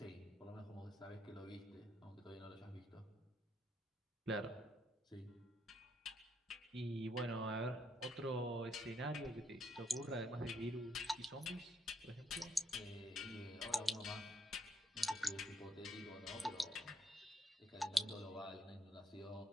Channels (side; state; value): both; normal; correlation 0.74